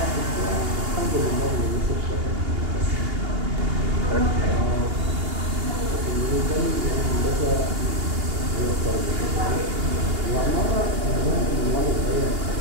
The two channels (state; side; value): late; left; 2.8 ms